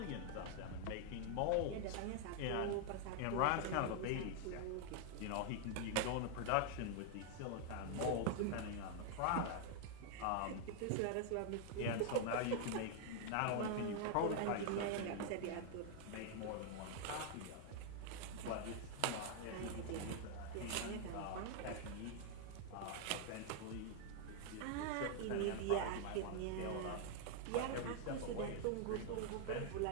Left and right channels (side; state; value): both; different; correlation 0.00